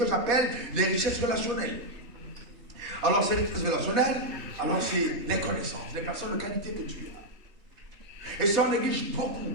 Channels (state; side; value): late; left; 3.2 ms